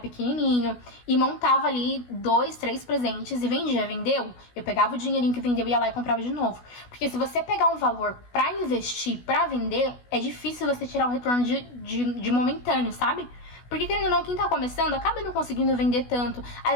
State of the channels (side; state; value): right; late; 16 ms